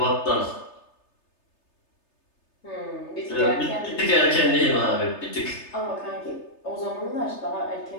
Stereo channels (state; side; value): late; right; 3.3 ms